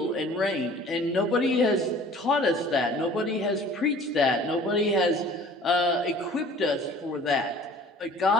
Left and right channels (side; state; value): both; normal; correlation 0.48